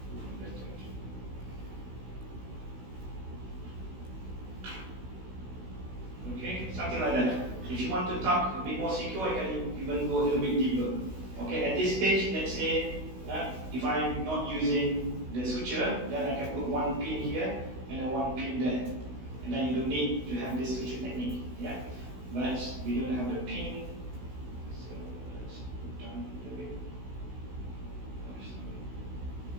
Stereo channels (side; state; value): left; late; 16 ms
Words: okay, something like that. If you want to tuck a bit more secure, you can even go a little bit deeper. Okay, at this stage, let's say if I'm not using the suture, then I can put one pin here and one pin there. And then you don't need to have this suture technique. Yeah? But we don't have the pin. So let's put down a little bit.